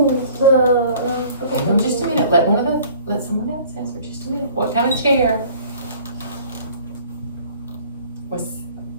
Hang on just a minute, let someone else answer just a minute. What kind of chair was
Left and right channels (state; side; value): inverted; both; correlation -0.51